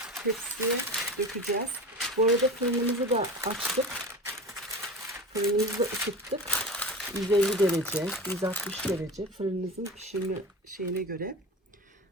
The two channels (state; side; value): normal; both; correlation 0.32